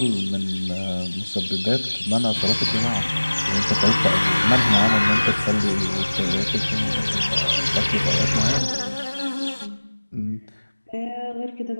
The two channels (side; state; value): both; inverted; correlation -1.00